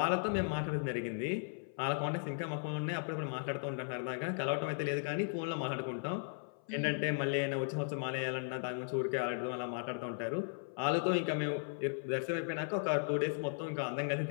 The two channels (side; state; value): right; silent; 53 dB below the other